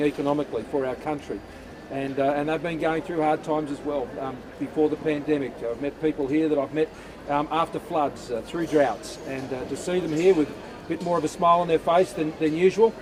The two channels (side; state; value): both; identical; correlation 1.00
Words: economically for our country. And they've been going through hard times as well before the pandemic. I've met people here that I've met after floods, through droughts, and to see them here with a bit more of a smile on their face than usual